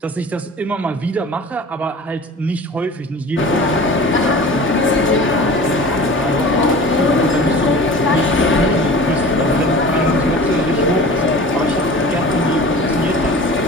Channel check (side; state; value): both; normal; correlation 0.39